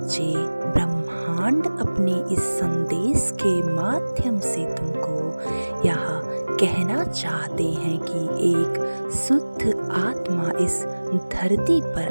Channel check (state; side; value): inverted; both; correlation -1.00